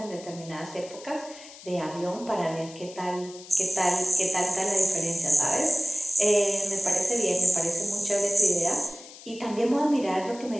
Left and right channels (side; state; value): left; noise; hiss, 18 dB below the sound